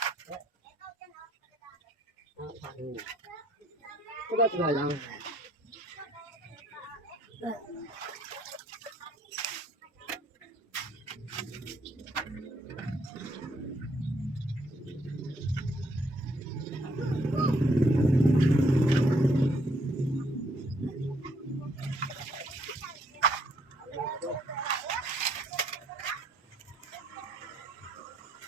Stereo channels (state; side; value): normal; both; correlation 0.69